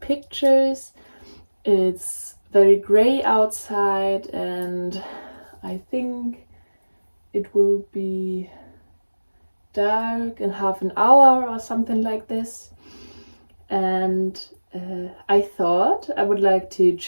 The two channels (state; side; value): inverted; both; correlation -1.00